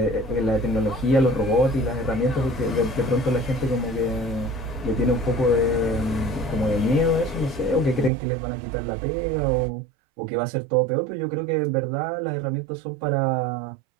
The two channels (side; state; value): left; drops out; at 8.1 s